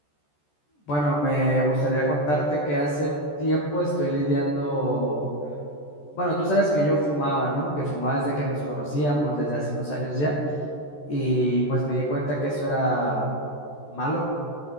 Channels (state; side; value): late; right; 14 ms